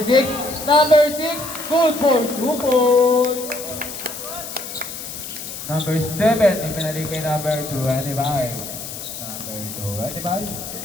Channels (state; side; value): noise; left; hiss, 9 dB below the sound